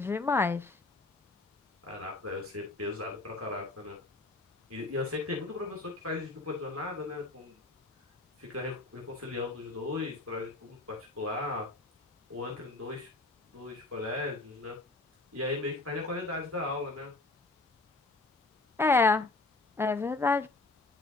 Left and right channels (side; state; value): right; quieter; 3.2 dB